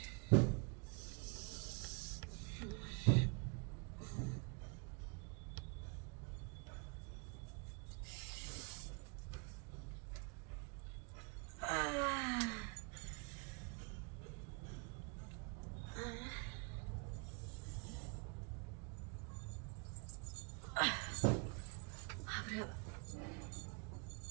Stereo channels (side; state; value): left; quieter; 33.6 dB